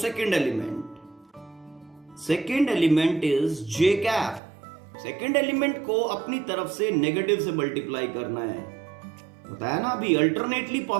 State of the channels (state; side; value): drops out; left; at 4.4 s